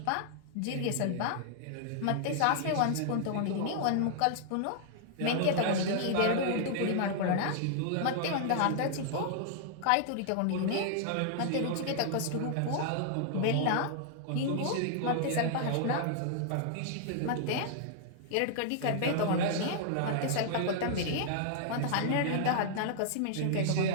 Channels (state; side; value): different; both; correlation -0.01